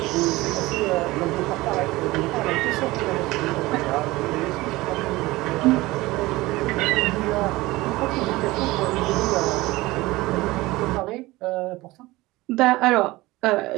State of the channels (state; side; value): quieter; left; 19.7 dB